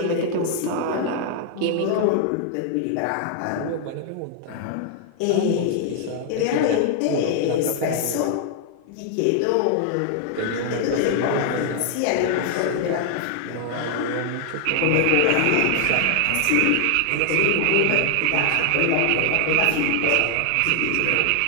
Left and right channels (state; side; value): different; both; correlation 0.00